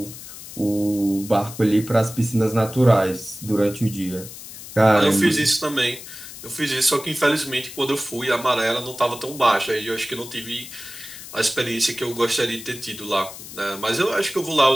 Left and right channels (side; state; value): left; noise; hiss, 13 dB below the sound